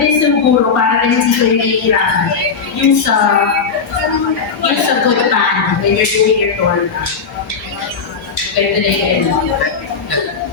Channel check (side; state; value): right; quieter; 5.5 dB